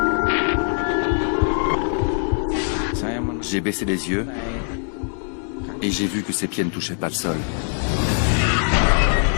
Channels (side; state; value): right; silent; 64 dB below the other